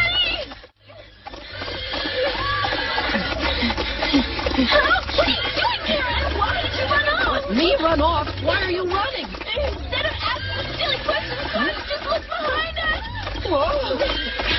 Help! What are you doing here? Why did you run off? Let me run off? Why are you running? Instead of asking silly questions, why don't you just look behind us? Whoa!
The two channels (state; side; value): identical; both; correlation 1.00